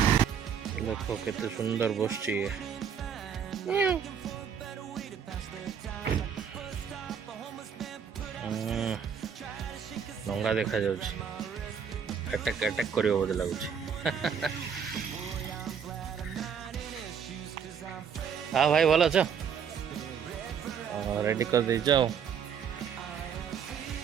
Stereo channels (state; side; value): quieter; left; 7.3 dB